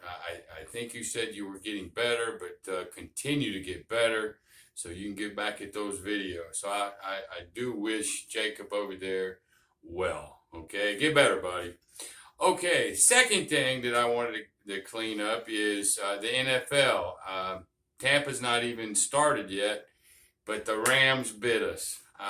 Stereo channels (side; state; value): both; identical; correlation 1.00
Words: think you said you were getting better, but continue to get better so you can get back at those videos. So I do wish Jacob over there well. Okay, get better, buddy. Okay, second thing that I wanted to clean up is the NFL. Tampa's not even started yet, but the Rams bit us.